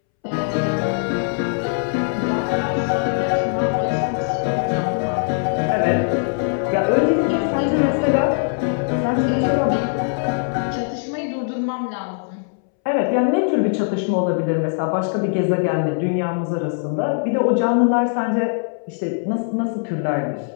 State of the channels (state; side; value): silent; right; 65 dB below the other